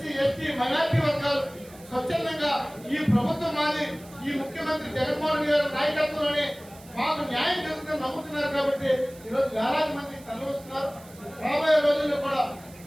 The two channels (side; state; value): right; noise; hiss, 22 dB below the sound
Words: ఎస్టీ, మైనార్టీ వర్గాలు స్వచ్ఛందంగా ఈ ప్రభుత్వం మాది, ఈ ముఖ్యమంత్రి జగన్మోహన్ రెడ్డి గారి నాయకత్వంలోనే మాకు న్యాయం జరుగుతుందని నమ్ముతున్నారు. కాబట్టి ఈరోజు వేలాది మంది తరలిస్తున్నారు. రాబోయే రోజుల్లో కూడా